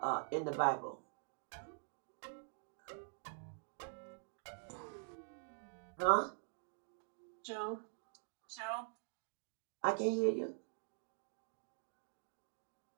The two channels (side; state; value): left; silent; digital silence